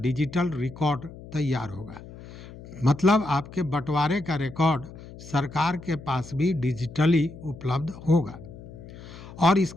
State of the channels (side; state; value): left; noise; hum, 16 dB below the sound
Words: रिकॉर्ड तैयार होगा। मतलब आपके बंटवारे का रिकॉर्ड सरकार के पास भी डिजिटली उपलब्ध होगा, और